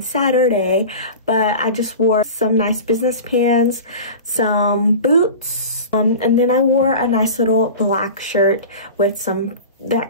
Saturday, but I just wore some nice business pants, some boots, and then I wore a nice little black shirt with some that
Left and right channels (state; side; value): inverted; both; correlation -0.33